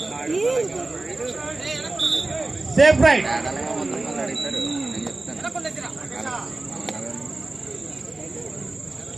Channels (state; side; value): quieter; left; 3.0 dB